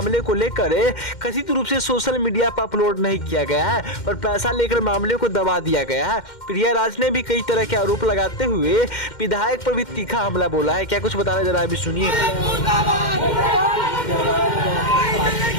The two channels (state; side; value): late; right; 2.1 ms